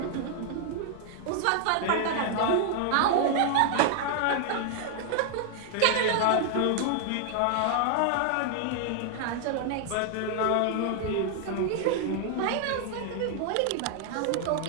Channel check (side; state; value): both; different; correlation -0.01